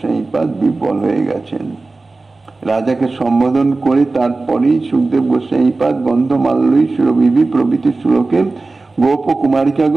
বিহ্বল হয়ে গেছেন। রাজাকে সম্বোধন করে তারপরেই সুখদেব গোস্বামীপাদ গন্ধমাল্যই সুরভিভি প্রভৃতি শ্লোকে গোপ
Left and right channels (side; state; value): left; quieter; 3.5 dB